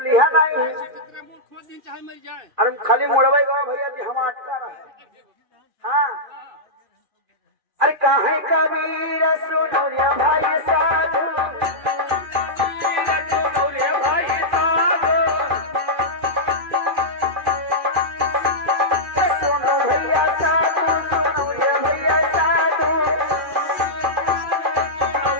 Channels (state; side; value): late; left; 2.4 ms